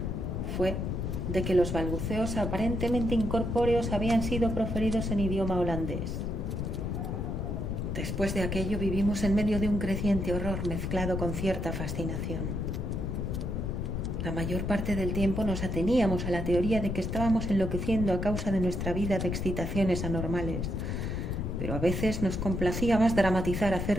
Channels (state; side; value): noise; left; rumble, 2 dB below the sound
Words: fue de que los balbuceos aparentemente incorpóreos habían sido proferidos en idioma holandés. Después de aquello vivimos en medio de un creciente horror mezclado con cierta fascinación. La mayor parte del tiempo nos ateníamos a la teoría de que estábamos enloqueciendo a causa de nuestra vida de excitaciones anormales, pero a veces nos complacía más dramatizar